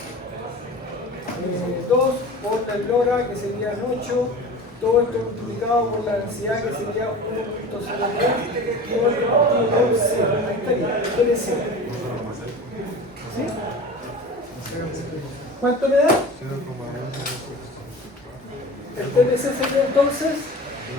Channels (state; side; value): normal; both; correlation 0.36